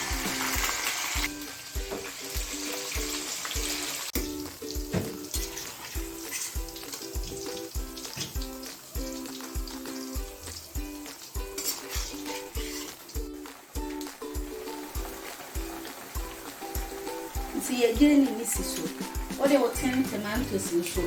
See again in this so. What they will 10 tomatoes in so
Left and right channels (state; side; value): identical; both; correlation 1.00